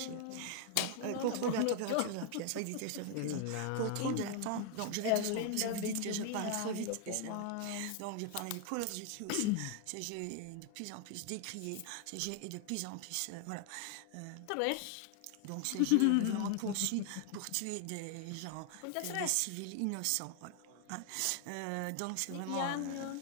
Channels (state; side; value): different; both; correlation 0.00